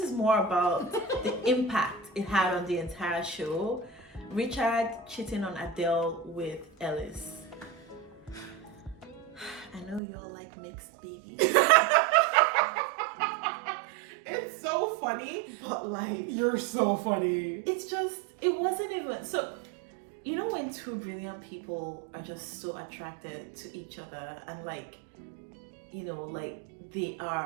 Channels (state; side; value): drops out; left; at 10.0 s